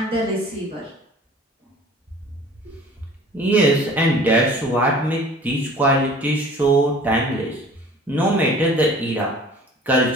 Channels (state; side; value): normal; both; correlation 0.47